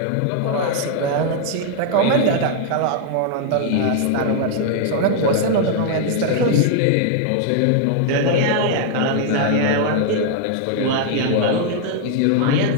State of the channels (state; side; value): different; both; correlation 0.00